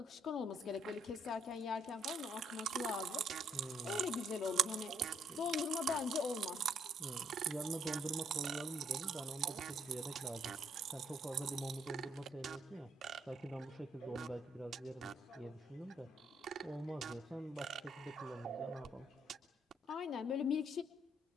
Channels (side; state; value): both; normal; correlation 0.69